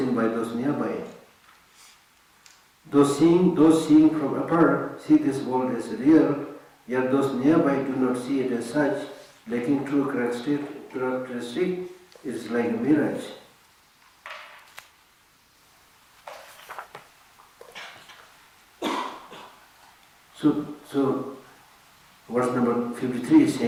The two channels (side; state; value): both; identical; correlation 1.00